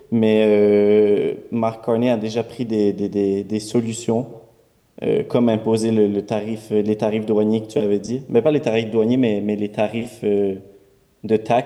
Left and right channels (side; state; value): both; identical; correlation 1.00